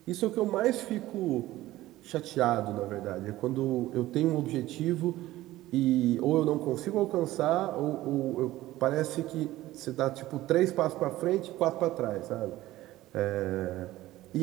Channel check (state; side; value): quieter; left; 16.2 dB